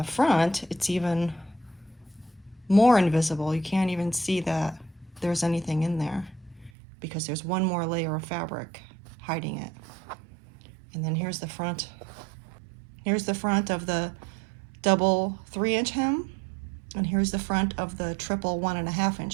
front, it's even more invisible. You can't even see that there's anything in there because there's one more layer of fabric hiding it. And then here's the front. Here's the front of the double 3-inch hem, and here's the front of the triple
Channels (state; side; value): drops out; left; at 6.7 s